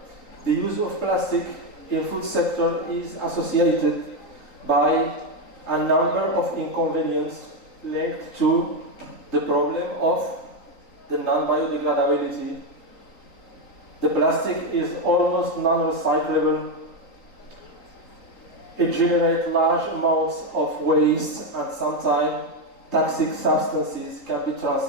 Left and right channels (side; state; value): right; late; 3.9 ms